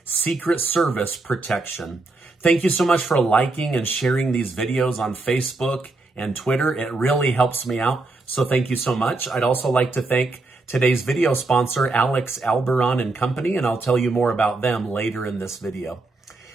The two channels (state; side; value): quieter; left; 3.3 dB